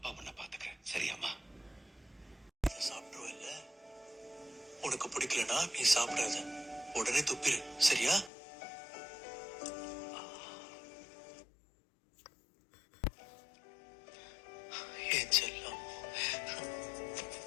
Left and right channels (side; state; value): right; drops out; at 8.3 s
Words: உன்னை பாத்துக்க, சரியாமா? சாப்பிடுவல்ல, உனக்கு பிடிக்கலனா நீ சாப்பிடாத, உடனே துப்பிரு, சரியா? ஏன் செல்லம்,